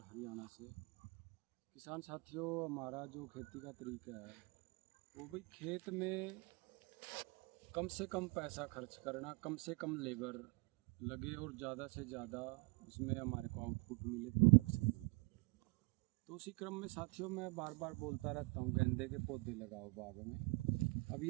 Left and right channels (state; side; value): quieter; left; 28.8 dB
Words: हरियाणा से। किसान साथियों, हमारा जो खेती का तरीका है वो भी खेत में कम से कम पैसा खर्च करना, कम से कम लेबर लगे और ज़्यादा से ज़्यादा उसमें हमारे को आउटपुट मिले, प्रोडक्शन मिले। तो उसी क्रम में साथियों मैं बार बार बोलता रहता हूँ, गेंदे के पौधे लगाओ बाग में। अभी